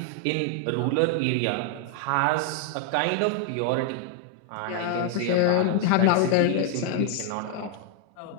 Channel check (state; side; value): different; both; correlation 0.00